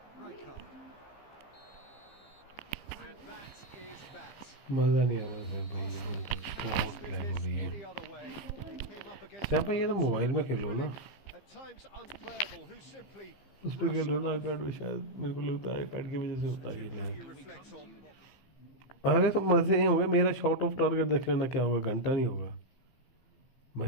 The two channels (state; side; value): late; right; 15 ms